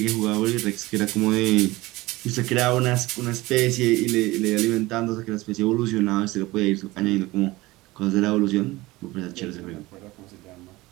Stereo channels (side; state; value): left; quieter; 20.0 dB